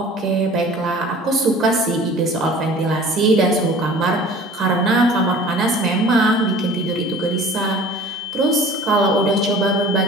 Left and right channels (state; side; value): normal; both; correlation 0.45